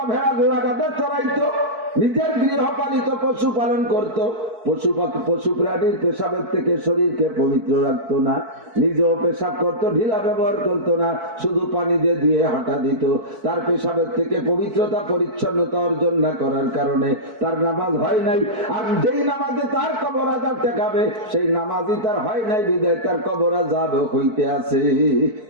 ভেড়া ঘোড়া গাধা চড়াইতো, নিজের গৃহপালিত পশু পালন করত, পশু প্রাণীর পেশাবের থেকে শরীরকে পবিত্র রাখতো না, নিজেও পেশাব করত, ঢিলা ব্যবহার করতো না, শুধু পানি দিয়ে ধুয়ে হাঁটা দিত। তার পেশাবের থেকে পবিত্রতা পরিচ্ছন্নতা অর্জন না করার কারণে তার নামাজ হয় নাই, আর যেই নামাজে তার কবর আযাব ঠেকাবে সেই নামাজই তার হয় নাই, বিদায় তার কবর আযাব হইতে আছে।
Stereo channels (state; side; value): late; left; 4.6 ms